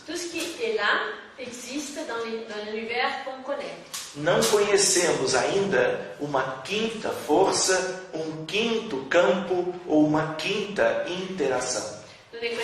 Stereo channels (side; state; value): both; identical; correlation 1.00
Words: Tout ce qui est là existe dans l'univers qu'on connaît. Não conhecemos ainda uma quinta força, um quinto campo ou uma quinta interação. Nous ne